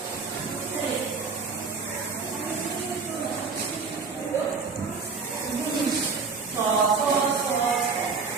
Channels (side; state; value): left; quieter; 4.8 dB